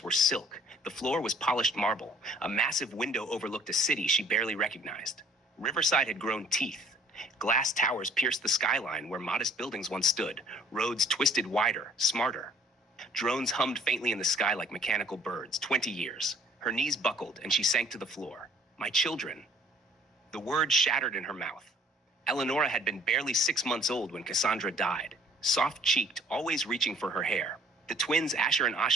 were silk. The floor was polished marble. A massive window overlooked a city she barely recognized. Riverside had grown teeth. Glass towers pierced the skyline where modest buildings once stood. Roads twisted wider, smarter. Drones hummed faintly in the sky like mechanical birds. 20 years. Her knees buckled and she sank to the floor. My children. The word shattered in her mouth. Eleonora had been barely 6 months old when Kassandra died. Soft-cheeked, always reaching for her hair. The twins Asher and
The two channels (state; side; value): normal; both; correlation 0.56